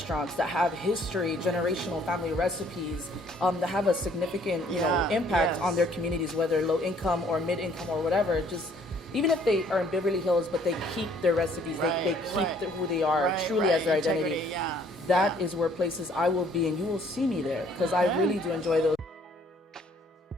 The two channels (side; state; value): both; normal; correlation 0.61